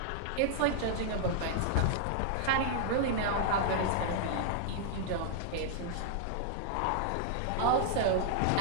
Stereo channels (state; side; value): different; both; correlation -0.01